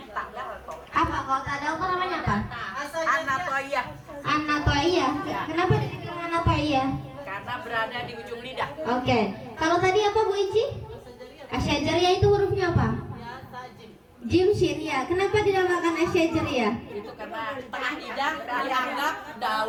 Apa kalau tak ada apa namanya apa? Anatoia, Anatoia. Kenapa dibilang Anatoia? karena berada di ujung lidah. Oke. Kalau tadi apa Bu Ici? Asyajariyah itu hurufnya apa? Jim Shin ya. Kenapa dinamakan Asyajariyah? Itu karena tengah lidah dianggap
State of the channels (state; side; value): identical; both; correlation 1.00